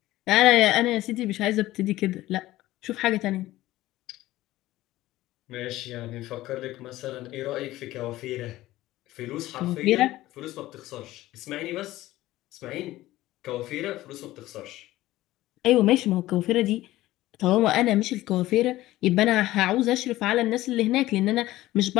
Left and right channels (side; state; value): right; quieter; 16.4 dB